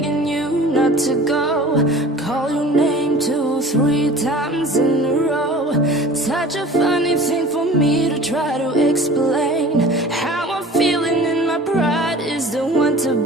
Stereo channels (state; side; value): normal; both; correlation 0.43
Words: you not to go. Call your name 2, 3 times in a row. Such a funny thing for me to try to explain. How I'm feeling and my pride is the one to